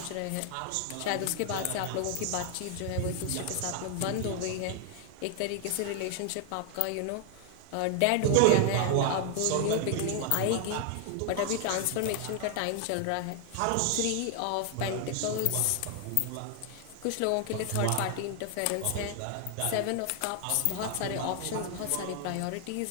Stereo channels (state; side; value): different; both; correlation 0.00